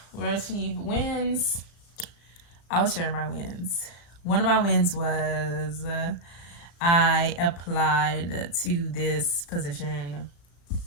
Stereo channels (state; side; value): late; right; 35 ms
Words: were achieved. Wins, I will share my wins. One of my wins was I applied to this position.